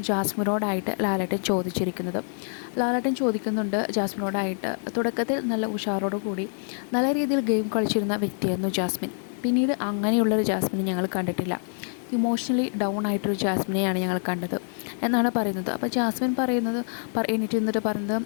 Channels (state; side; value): silent; right; 59 dB below the other